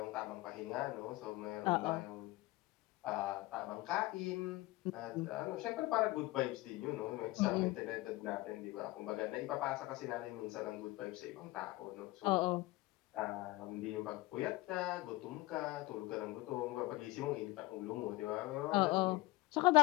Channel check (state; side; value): quieter; right; 20.2 dB